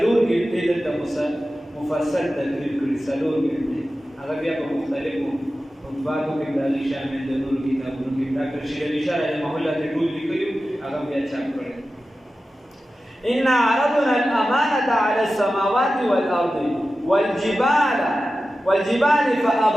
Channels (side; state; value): both; normal; correlation 0.94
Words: کې د مفصل تدریب کړی سلور کې هغه بیا په مختلفو مطبعاتو کې دالي شامل د نور کتابونو کې ډاکټر شیر علي شاه رحمه الله ته ټول لیکلو هغه بیا چاپ کړی إن عرضنا الأمانة على السماوات والأرض والجبال